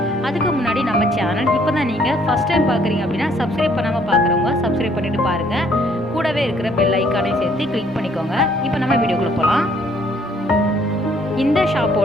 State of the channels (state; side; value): normal; both; correlation 0.64